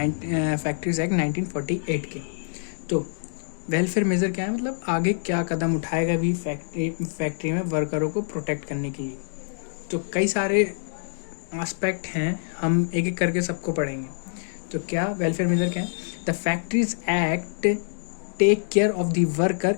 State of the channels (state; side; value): silent; right; digital silence